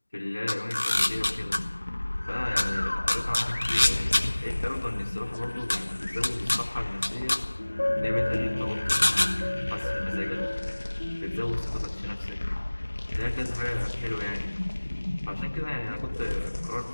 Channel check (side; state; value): both; inverted; correlation -1.00